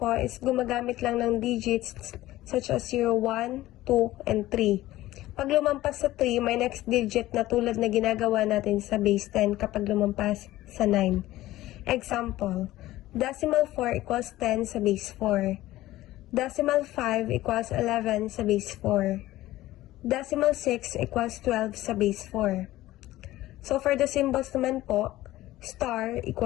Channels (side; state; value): right; quieter; 16.1 dB